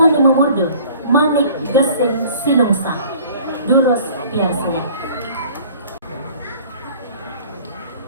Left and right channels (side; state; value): both; inverted; correlation -0.50